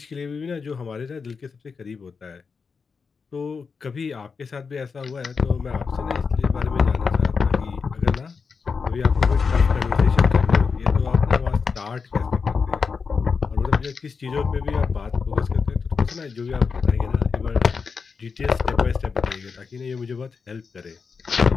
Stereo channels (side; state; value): right; quieter; 5.3 dB